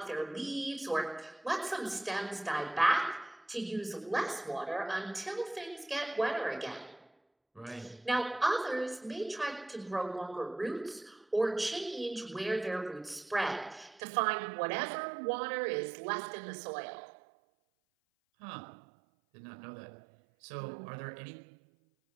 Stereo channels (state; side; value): drops out; left; at 14.0 s